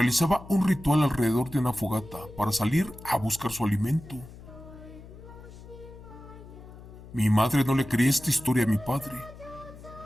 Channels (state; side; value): noise; left; hum, 17 dB below the sound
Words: un ritual alrededor de una fogata para salir a buscar su alimento. Mi madre no le creía esta historia a mi padre.